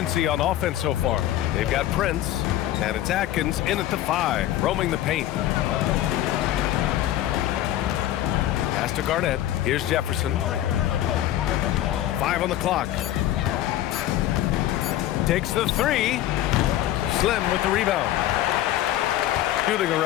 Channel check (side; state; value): right; quieter; 13.3 dB